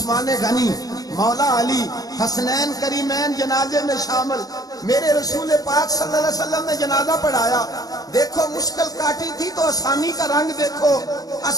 غنی, مولا علی, حسنین کریمین جنازے میں شامل. میرے رسول پاک صلی اللہ علیہ وسلم نے جنازہ پڑھایا. دیکھو مشکل کاٹی تھی تو آسانی کا رنگ دیکھو,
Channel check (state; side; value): late; right; 0.18 ms